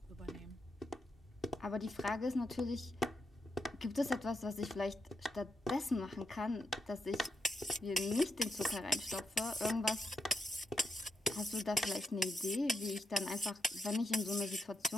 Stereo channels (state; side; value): normal; both; correlation 0.84